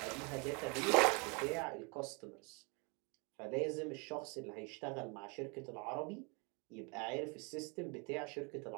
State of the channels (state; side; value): quieter; left; 32.3 dB